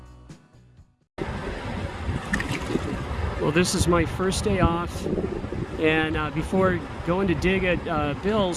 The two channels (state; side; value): identical; both; correlation 1.00